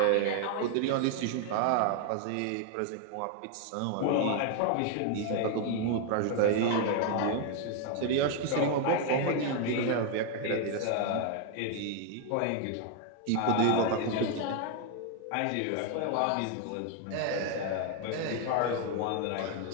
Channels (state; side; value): different; both; correlation 0.00